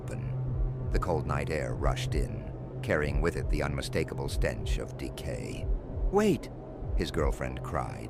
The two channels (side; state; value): both; identical; correlation 1.00